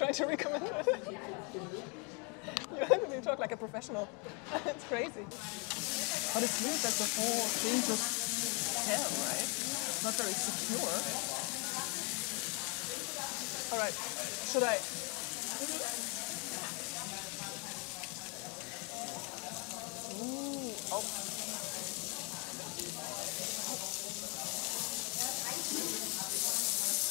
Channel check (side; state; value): right; quieter; 33.8 dB